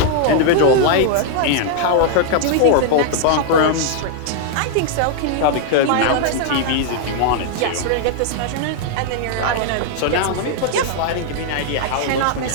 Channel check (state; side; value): different; both; correlation 0.00